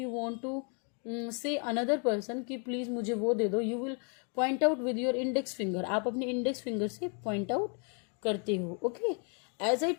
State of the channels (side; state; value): right; quieter; 39.9 dB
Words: want to say another person कि प्लीज मुझे वो दे दो, you will point out with your index finger. आप अपने इंडेक्स फिंगर से पॉइंट आउट करते हो। Okay, as I